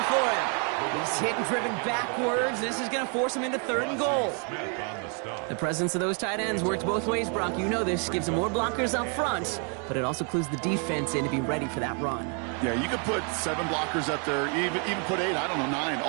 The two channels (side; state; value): left; quieter; 39.2 dB